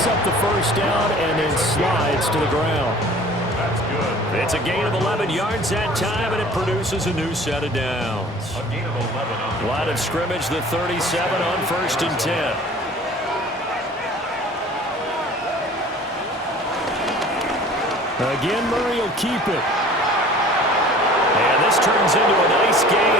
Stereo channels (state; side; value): normal; both; correlation 0.47